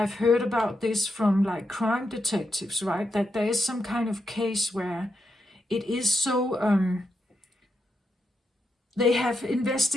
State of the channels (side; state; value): both; normal; correlation 0.84